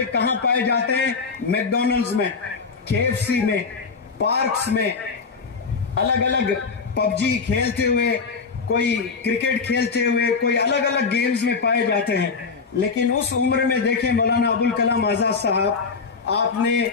کہاں پائے جاتے ہیں؟ میکڈونلڈز میں، KFC میں، پارکس میں، الگ الگ پب جی کھیلتے ہوئے، کوئی کرکٹ کھیلتے ہوئے، کوئی الگ الگ گیمز میں پائے جاتے ہیں۔ لیکن اس عمر میں دیکھیں مولانا ابوالکلام آزاد صاحب، آپ نے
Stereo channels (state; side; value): quieter; right; 5.0 dB